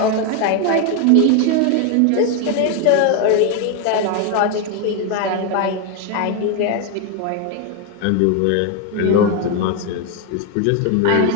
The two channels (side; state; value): both; different; correlation 0.01